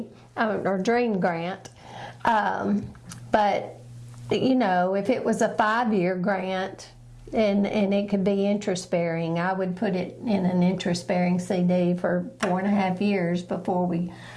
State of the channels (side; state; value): both; identical; correlation 1.00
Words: or dream grant. But, if it was a 5-year grant and it could be interest bearing, I would put it in an interest bearing CD for 4.5 years before we